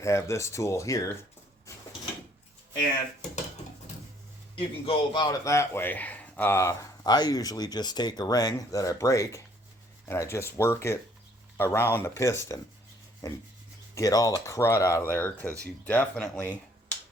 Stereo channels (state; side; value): normal; both; correlation 0.63